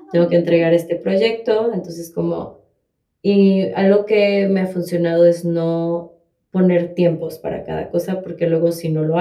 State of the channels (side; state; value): both; identical; correlation 1.00